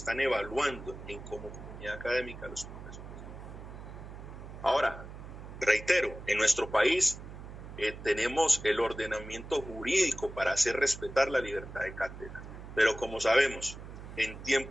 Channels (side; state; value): right; noise; hum, 13 dB below the sound